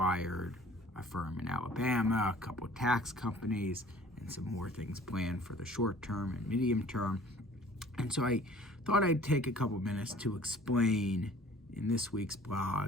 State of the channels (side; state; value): both; normal; correlation 0.50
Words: a firm in Alabama, a couple of tax companies, and some more things planned for the short term and medium term. And so I thought I'd take a couple minutes to explain in this week's